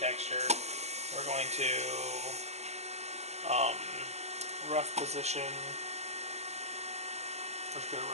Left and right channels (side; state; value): left; late; 0.32 ms